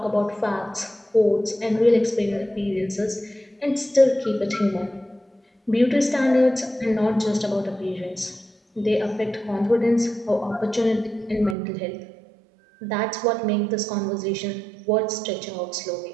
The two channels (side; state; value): left; drops out; at 11.6 s